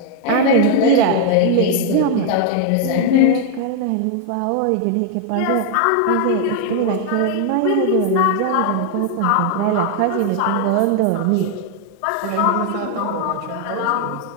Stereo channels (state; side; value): different; both; correlation 0.00